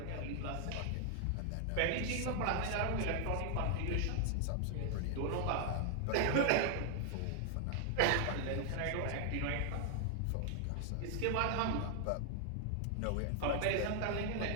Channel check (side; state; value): both; different; correlation 0.00